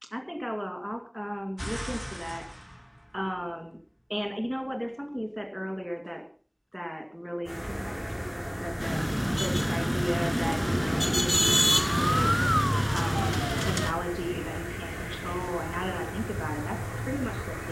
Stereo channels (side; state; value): both; identical; correlation 1.00